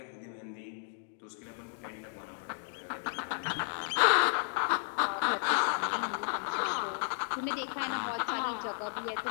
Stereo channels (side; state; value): right; silent; digital silence